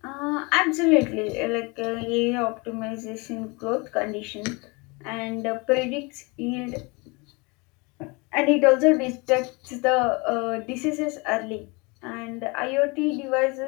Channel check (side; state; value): right; quieter; 27.9 dB